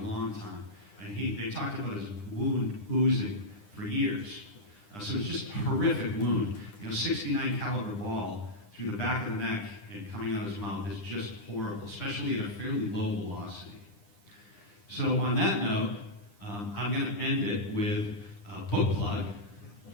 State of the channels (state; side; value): late; right; 9.9 ms